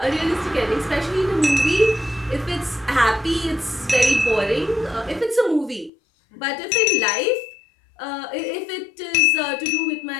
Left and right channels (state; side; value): drops out; right; at 5.9 s